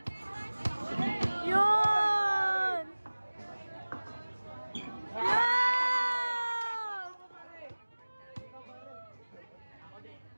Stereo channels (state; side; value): inverted; both; correlation -1.00